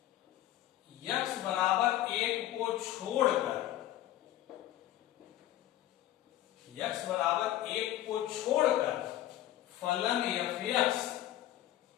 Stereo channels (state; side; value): quieter; right; 13.7 dB